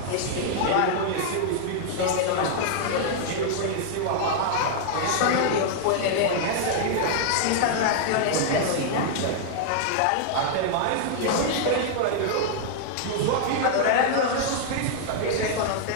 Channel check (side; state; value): both; different; correlation -0.01